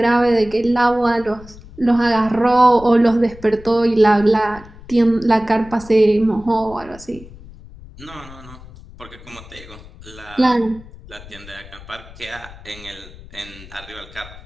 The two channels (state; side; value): noise; left; rumble, 19 dB below the sound